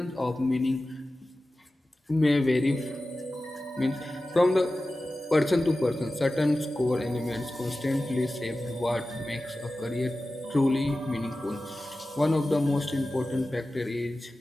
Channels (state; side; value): normal; both; correlation 0.95